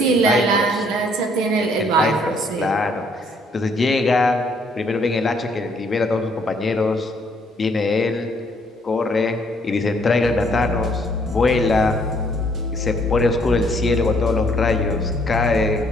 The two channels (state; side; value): normal; both; correlation 0.66